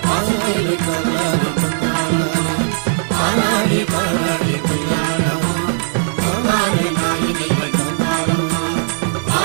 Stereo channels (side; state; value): left; silent; digital silence